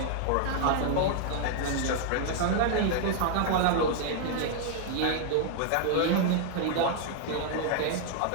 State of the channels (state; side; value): different; both; correlation 0.00